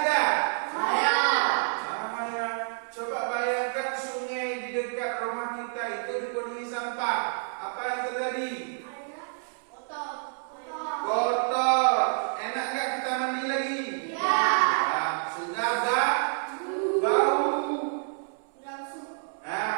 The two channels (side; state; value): left; silent; 59 dB below the other